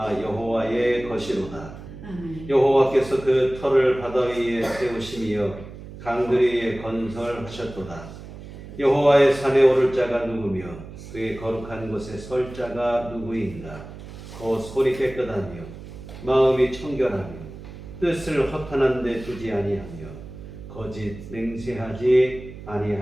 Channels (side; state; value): right; noise; hum, 14 dB below the sound